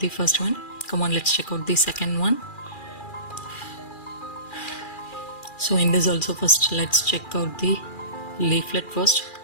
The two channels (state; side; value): late; right; 2.4 ms